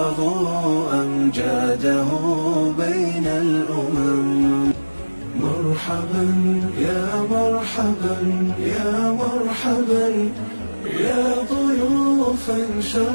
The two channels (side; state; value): both; inverted; correlation -1.00